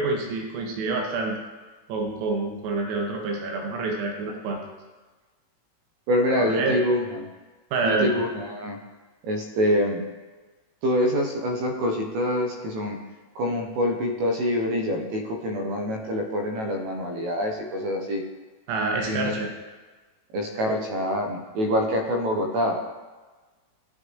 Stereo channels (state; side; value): late; left; 18 ms